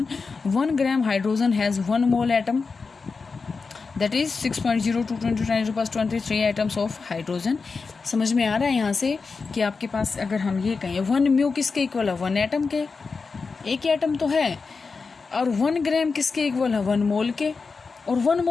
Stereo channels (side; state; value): right; quieter; 4.6 dB